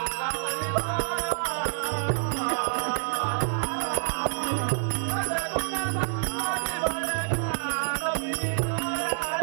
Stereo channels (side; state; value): left; silent; 60 dB below the other